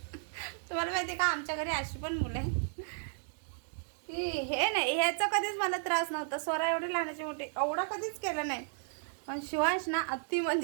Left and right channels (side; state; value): left; silent; digital silence